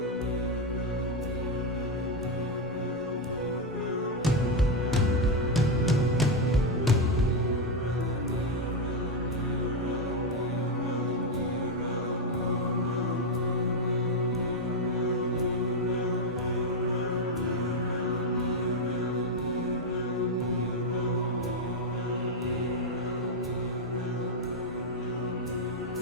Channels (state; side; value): normal; both; correlation 0.05